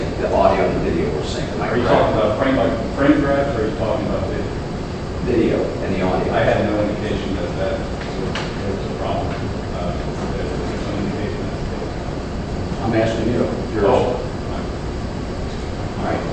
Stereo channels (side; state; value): both; identical; correlation 1.00